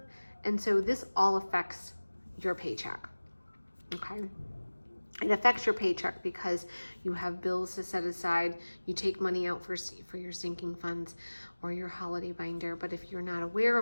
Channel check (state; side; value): inverted; both; correlation -1.00